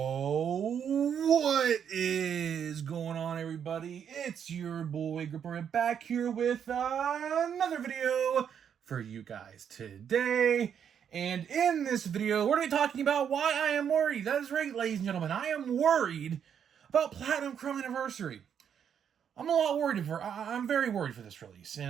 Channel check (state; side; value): quieter; left; 8.2 dB